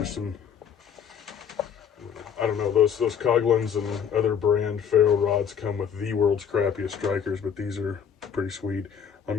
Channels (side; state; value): right; quieter; 7.7 dB